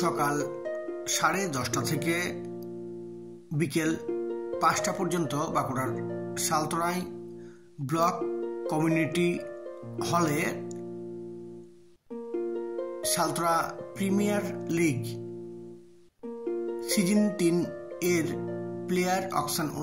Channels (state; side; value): identical; both; correlation 1.00